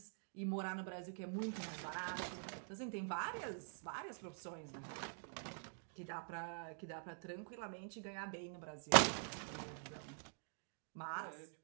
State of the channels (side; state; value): left; silent; digital silence